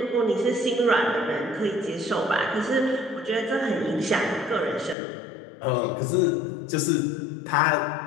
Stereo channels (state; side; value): drops out; right; at 5.0 s